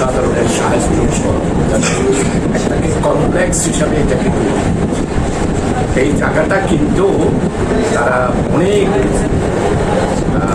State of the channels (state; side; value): identical; both; correlation 1.00